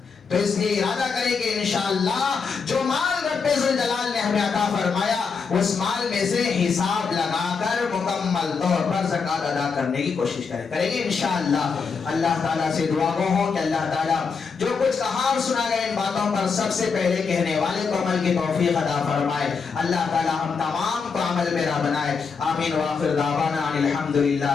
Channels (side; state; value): right; quieter; 5.4 dB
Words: تو اس لیے ارادہ کریں کہ انشاءاللہ جو مال رب ذوالجلال نے ہمیں عطا فرمایا اس مال میں سے حساب لگا کر مکمل طور پر زکات ادا کرنے کی کوشش کریں گے انشاءاللہ. اللہ تعالیٰ سے دعا گو ہوں کہ اللہ تعالیٰ جو کچھ کہا اور سنا گیا ان باتوں پر سب سے پہلے کہنے والے کو عمل کی توفیق عطا فرمائے. اللہ تعالیٰ ہم تمام کو عمل میرا بنائے. آمین. وآخر دعوانا